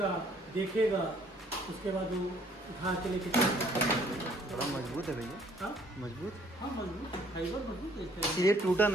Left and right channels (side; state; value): both; normal; correlation 0.61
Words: देखेगा, उसके बाद वो उठा के लेके चलेगा। बड़ा मजबूत है भैया। हाँ मजबूत। हाँ मजबूत, फाइबर मजबूत है। ये टूटा